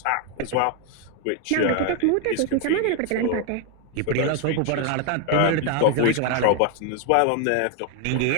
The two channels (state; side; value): different; both; correlation 0.01